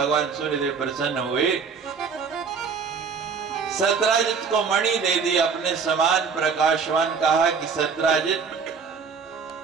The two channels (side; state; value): left; quieter; 5.7 dB